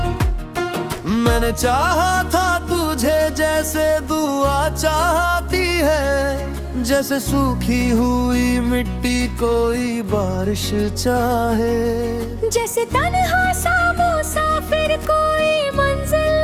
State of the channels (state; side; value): identical; both; correlation 1.00